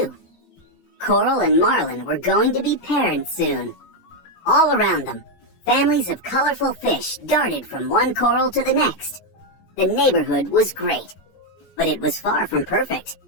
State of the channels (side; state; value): right; late; 15 ms